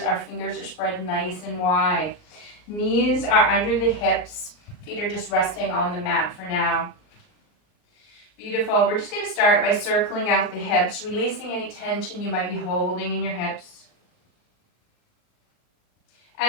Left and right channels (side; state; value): right; late; 39 ms